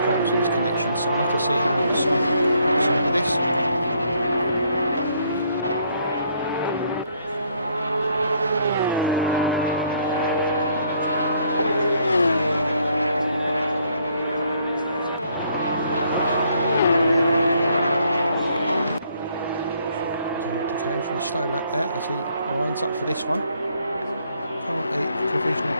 with his connection, so I'll have to see how long Simon gets on with this. For a slow lap there as he winds up for this one. Currently provisional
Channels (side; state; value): both; inverted; correlation -0.68